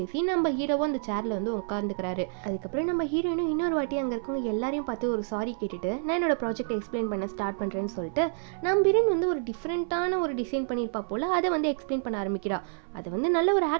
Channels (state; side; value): silent; left; 59 dB below the other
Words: நம்ம ஹீரோவும் அந்த சேரில் வந்து உட்காந்துக்கிறாரு. அதுக்கப்புறம் நம்ம ஹீரோயினும் இன்னொரு வாட்டி அங்கே இருக்கவங்க எல்லாரையும் பார்த்து ஒரு சாரி கேட்டுட்டு நான் என்னோட ப்ராஜெக்ட் எக்ஸ்பிளைன் பண்ண ஸ்டார்ட் பண்ணுறேன்னு சொல்லிட்டு நம்ம ஹீரோயின் வந்து ஒரு டிஃப்ரெண்ட்டான ஒரு டிசைன் பண்ணியிருப்பா போல் அதை வந்து எக்ஸ்பிளைன் பண்ண ஆரம்பிக்கிறா. அதை வந்து நல்ல ஒரு